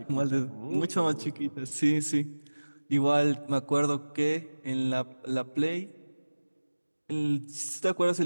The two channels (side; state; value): both; inverted; correlation -1.00